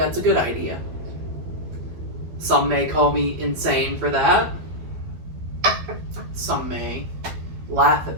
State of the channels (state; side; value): late; left; 12 ms